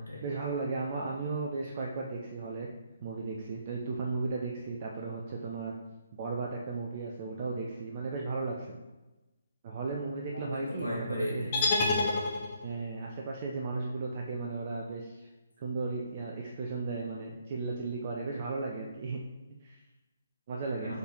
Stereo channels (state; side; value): inverted; both; correlation -0.69